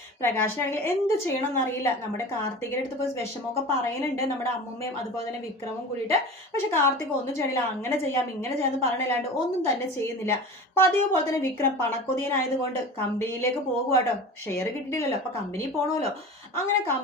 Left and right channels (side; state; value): both; normal; correlation 0.34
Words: പ്രകാശനാണെങ്കിൽ എന്ത് ചെയ്യണം എന്നറിയില്ല. നമ്മുടെ കാർത്തികയുടെ അടുത്ത് പോയി വിഷമമൊക്കെ പറയുന്നുണ്ട്, നമ്മുടെ അമ്മൂമ്മയും അതുപോലെ തന്നെ വിക്രമും കൂടിയിട്ട്. പക്ഷെ കാർത്തിക് ഒന്നും ചെയ്യണില്ല. അങ്ങനെ ചെയ്യാം ഇങ്ങനെ ചെയ്യാമെന്ന് പറയണില്ലാണ്ട് ഒന്നും തന്നെ ചെയ്യുന്നില്ല. പതിവ് പോലെ തന്നെ വിക്രം പണക്കൊതിയനായതുകൊണ്ട് കമ്പനിയിലേക്ക് പോകുവാട്ടോ. ഷെയർ കിട്ടിയിട്ടില്ലല്ലോ, അപ്പൊ കമ്പനി പോകണമല്ലോ. അങ്ങനെ